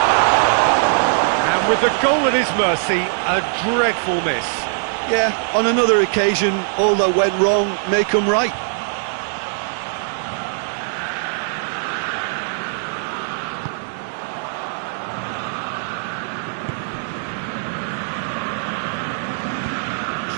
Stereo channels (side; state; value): left; silent; digital silence